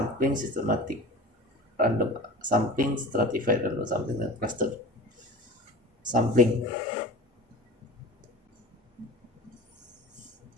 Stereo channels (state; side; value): normal; both; correlation 0.37